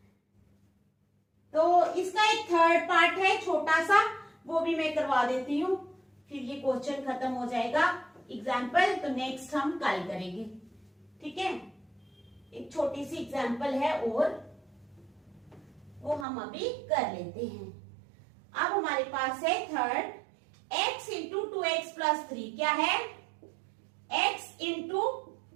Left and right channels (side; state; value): left; drops out; at 16.2 s